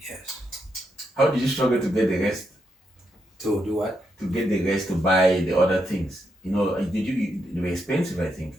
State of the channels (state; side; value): normal; both; correlation 0.81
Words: Yes. How did you struggle to get the rest? To do what? To get the rest to buy the other things. You know, they were expensive, I think.